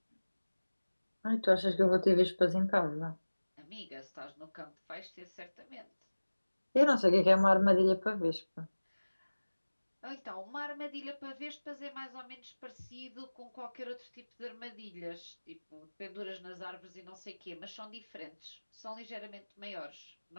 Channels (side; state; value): both; inverted; correlation -1.00